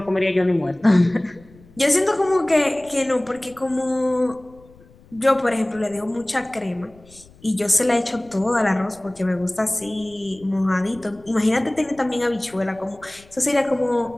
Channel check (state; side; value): noise; left; rumble, 26 dB below the sound